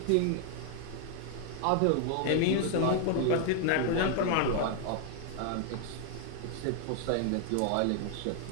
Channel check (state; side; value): different; both; correlation 0.00